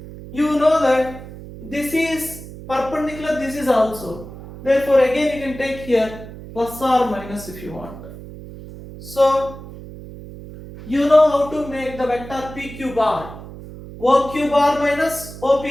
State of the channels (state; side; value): noise; right; hum, 14 dB below the sound